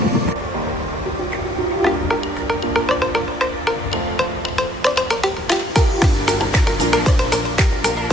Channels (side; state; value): both; normal; correlation 0.65